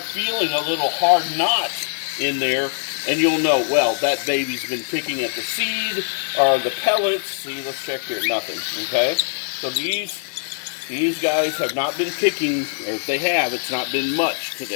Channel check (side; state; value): right; silent; 57 dB below the other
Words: feeling a little hard knot in there, and you'll know, well, that baby's been picking at the seed or the pellets. See, let's check here, nothing, okay? So these guys have not been picking, or if they have, it's not been much